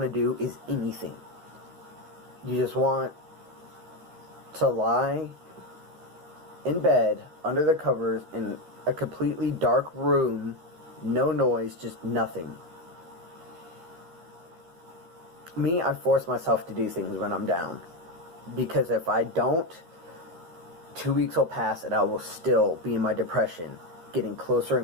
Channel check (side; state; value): left; late; 13 ms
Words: to do is anything. You just want to lie in bed, under the covers, in a completely dark room, no noise, just nothing. Me, I force myself to do things when I'm down. Because if I don't, 2 weeks will pass and I will still be in my depression, getting closer